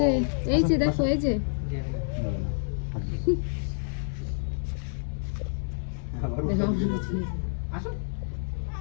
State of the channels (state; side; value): silent; right; digital silence